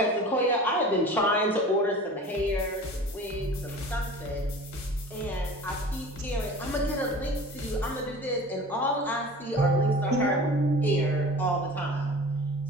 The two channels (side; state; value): both; normal; correlation 0.40